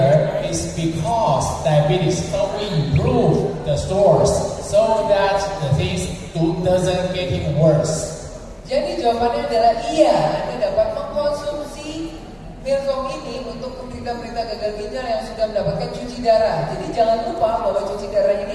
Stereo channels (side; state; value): both; identical; correlation 1.00